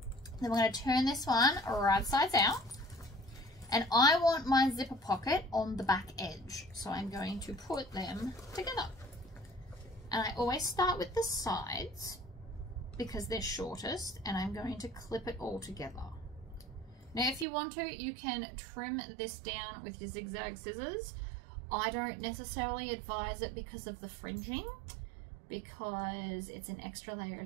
Then we're going to turn this one right sides out, and I want my zipper pocket on the back edge, so I'm going to put them together. And I always start with the sides because they're shortest, and I'm going to clip it all together. Now if you want to, you can trim this down with your zigzag scissors. I don't necessarily advise it because of the fringing, because it's an extra layer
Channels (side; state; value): left; drops out; at 17.4 s